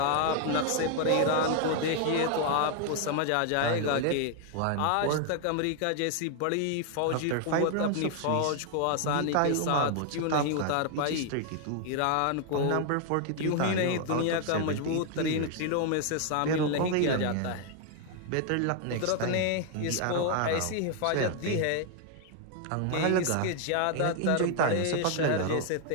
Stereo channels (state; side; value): different; both; correlation 0.00